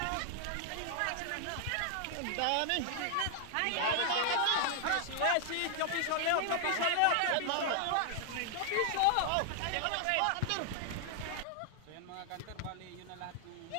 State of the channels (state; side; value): different; both; correlation 0.00